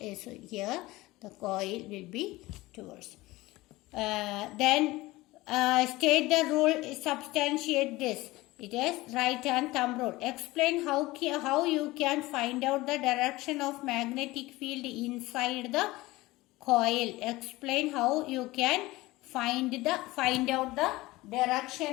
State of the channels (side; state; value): right; quieter; 19.6 dB